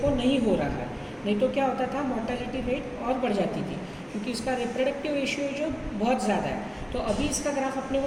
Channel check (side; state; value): both; identical; correlation 1.00